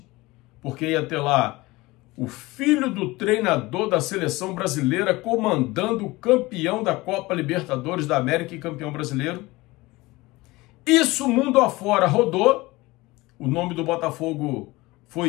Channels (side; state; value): right; quieter; 21.0 dB